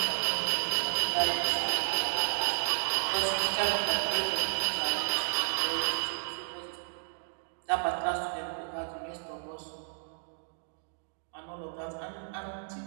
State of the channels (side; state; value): left; silent; digital silence